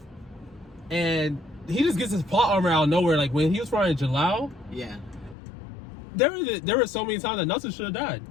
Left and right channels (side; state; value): right; drops out; at 5.4 s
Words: and he just gets his plot armor out of nowhere. Like, when he was fighting Jalal, Yeah. there were so many times that Natsu should have died.